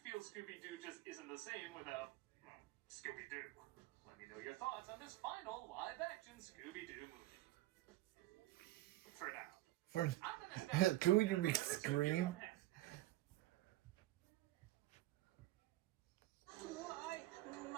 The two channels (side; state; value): left; quieter; 16.3 dB